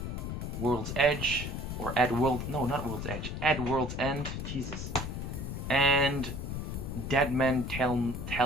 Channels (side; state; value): left; noise; rumble, 5 dB below the sound